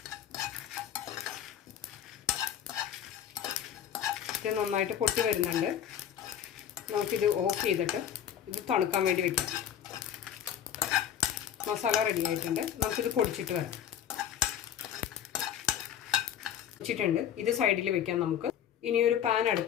ഇത് നന്നായിട്ട് പൊട്ടി വരുന്നുണ്ട്. നമുക്കിത് ഓഫ് ചെയ്തിട്ട് ഇത് തണുക്കാൻ വേണ്ടി വയ്ക്കാം. മസാല റെഡി ആയിട്ടുണ്ട്. നമുക്കിത് പൊടിച്ചിട്ട് വരാം. പൊടിച്ചിട്ടുണ്ട്. ഇത് സൈഡിൽ വെക്കാം. നമുക്ക് ഇനിയൊരു പാൻ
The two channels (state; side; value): quieter; right; 9.6 dB